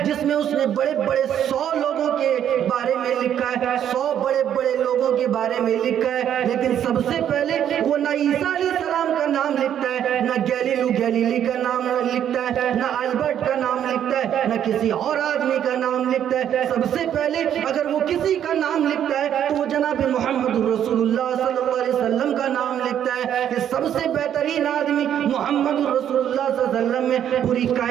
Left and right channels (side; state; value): left; quieter; 9.9 dB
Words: جس میں اس نے بڑے بڑے 100 لوگوں کے بارے میں لکھا ہے، 100 بڑے بڑے لوگوں کے بارے میں لکھا ہے، لیکن سب سے پہلے وہ نہ عیسیٰ علیہ السلام کا نام لکھتا ہے، نہ گیلیلیو گیلیلی کا نام لکھتا ہے، نہ البرٹ کا نام لکھتا ہے، نہ کسی اور آدمی کا نام لکھتا ہے۔ سب سے پہلے اگر وہ کسی کا نام لکھتا ہے تو وہ جناب محمد رسول اللہ صلی اللہ علیہ وسلم کا نام لکھتا ہے کہ سب سے بہترین آدمی محمد رسول اللہ صلی اللہ علیہ وسلم میں، پوری